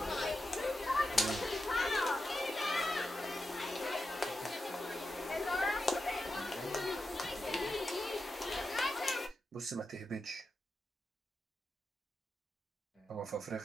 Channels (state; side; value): normal; both; correlation 0.89